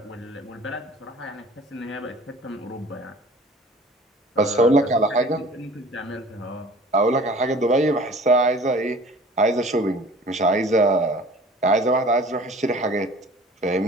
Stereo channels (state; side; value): normal; both; correlation 0.46